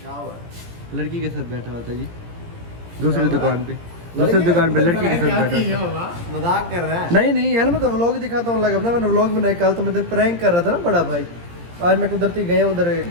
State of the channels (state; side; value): late; left; 17 ms